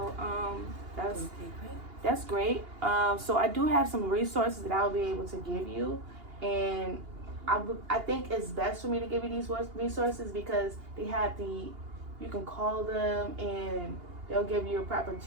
that's great. So I do have some resources that I'll be able to give you, and I think it's best for me to give you these resources because they have you can call them and they'll give you a proper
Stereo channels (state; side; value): late; left; 2.8 ms